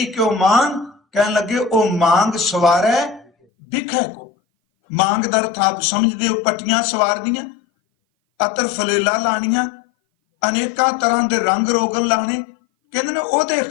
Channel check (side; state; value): right; drops out; at 3.3 s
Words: ਕਿਉ ਮਾਨ। ਕਹਿਣ ਲੱਗੇ ਉਹ ਮੰਗ ਸਵਾਰੈ ਬਿਖੈ ਕੋ। ਮੰਗ ਦਾ ਅਰਥ ਆਪ ਸਮਝਦੇ ਹੋ, ਪੱਟੀਆਂ ਸਵਾਰਦੀਆਂ, ਅਤਰ ਫਲੇਲਾ ਲਾਣੀਆਂ, ਅਨੇਕਾਂ ਤਰ੍ਹਾਂ ਦੇ ਰੰਗ ਰੋਗਨ ਲਾਣੇ। ਕਹਿੰਦੇ ਨੇ ਉਹਦੇ